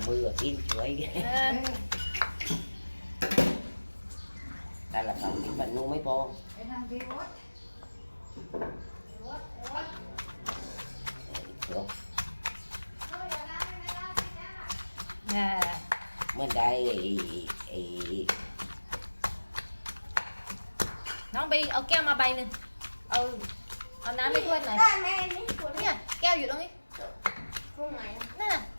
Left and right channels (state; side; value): inverted; both; correlation -1.00